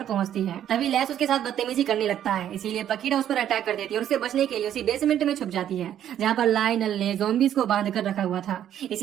पहुँचती है। तभी लेस उसके साथ बदतमीजी करने लगता है, इसीलिए पकीटा उस पर अटैक कर देती है और उससे बचने के लिए उसी बेसमेंट में छुप जाती है, जहाँ पर लायनल ने ज़ॉम्बीज को बांध कर रखा हुआ था।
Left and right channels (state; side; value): quieter; left; 10.6 dB